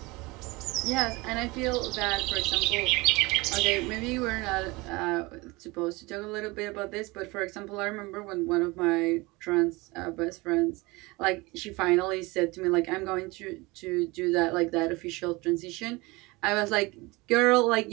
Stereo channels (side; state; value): left; quieter; 23.5 dB